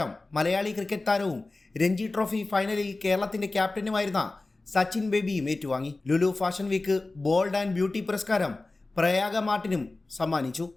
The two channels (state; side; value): quieter; right; 3.2 dB